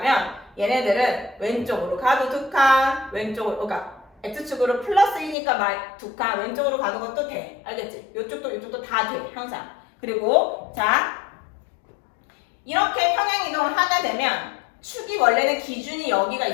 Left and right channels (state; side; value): drops out; right; at 5.4 s